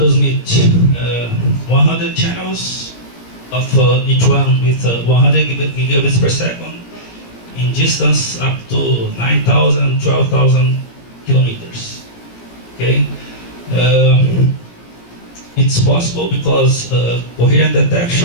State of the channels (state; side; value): late; right; 17 ms